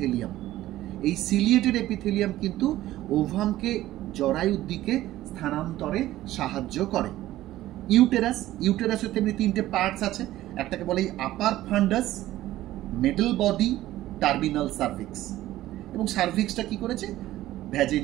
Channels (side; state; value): left; quieter; 15.1 dB